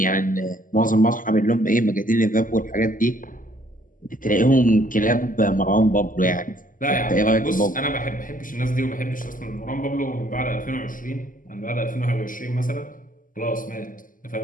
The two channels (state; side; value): late; right; 0.39 ms